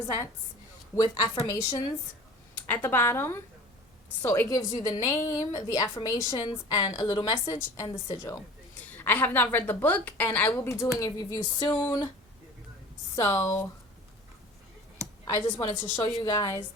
with affirmations at the bottom. So it gives you the name, the affirmations, and a little message, and the sigil. I have not read the book, and I will be doing a review soon. So I just wanted to show you guys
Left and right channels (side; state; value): both; normal; correlation 0.42